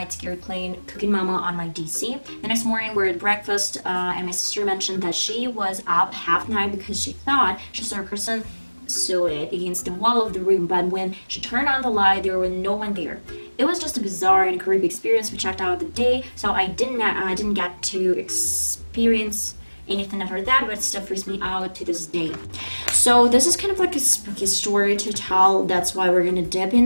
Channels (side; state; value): both; inverted; correlation -1.00